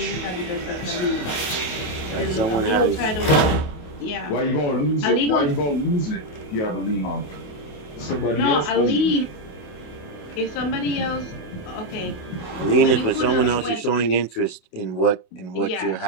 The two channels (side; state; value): right; late; 28 ms